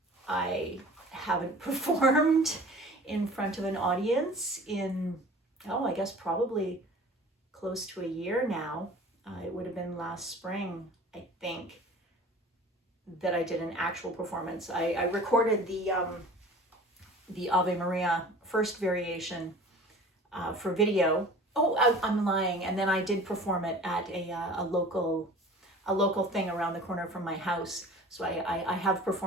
I haven't performed in front of an audience in, I guess probably close to a year now. It would have been last spring, I think, that I did an actual performance. I recorded the Ave Maria first variation for video. I'm lying. And then I did perform it at a local thing around the corner from my house. So I have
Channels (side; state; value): both; normal; correlation 0.44